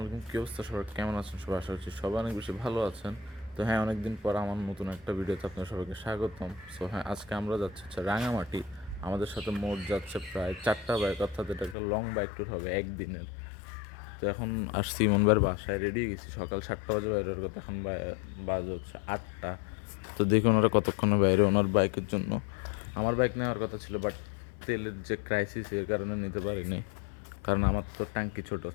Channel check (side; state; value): right; drops out; at 11.8 s